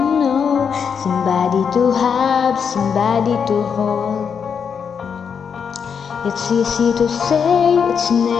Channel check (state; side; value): quieter; right; 6.8 dB